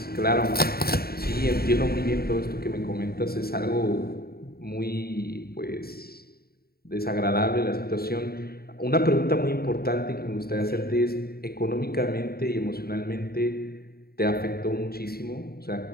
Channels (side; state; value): right; late; 0.45 ms